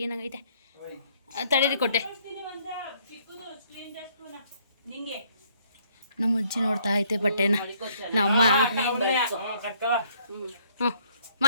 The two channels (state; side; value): inverted; both; correlation -0.65